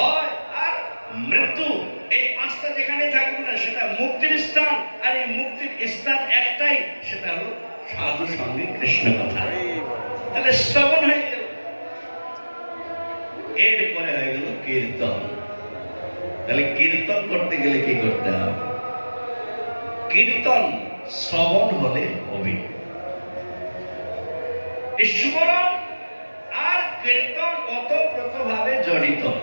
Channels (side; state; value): both; inverted; correlation -1.00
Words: আর মৃত্যু, এই পাঁচটা যেখানে থাকবে না সেটা মুক্তির স্থান। আর এই মুক্তির স্থান একটাই, সেটা হলো সাধু সঙ্গে কৃষ্ণ কথা। তাহলে শ্রবণ হয়ে গেল, এরপরে হয়ে গেল কীর্তন। তাহলে কীর্তন করতে গেলে কি করতে হবে? কীর্তন শ্রবণ হলে হবে, স্মরণ আর কীর্তন ওতপ্রোতভাবে জড়িত।